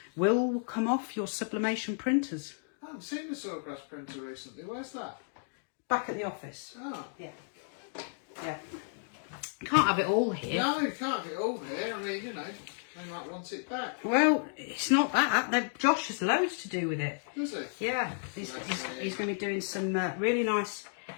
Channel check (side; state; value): right; silent; digital silence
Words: will come off your sublimation printers. I haven't seen the sawgrass printer recently. Where's that? Back at the office. Oh. Yeah. Yeah. Can't have it all here. No, you can't get all here. I mean, they might want it back. Well, it's not that. Josh has loads to do with it. Does it? Yeah, he's going to be doing some really nice